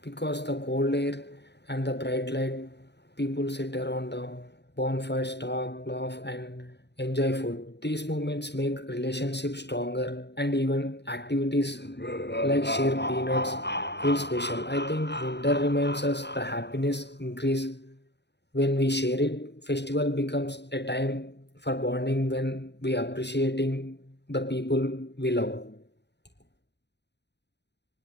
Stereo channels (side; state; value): right; late; 0.50 ms